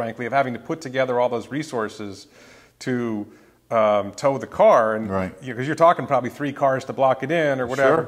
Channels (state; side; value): identical; both; correlation 1.00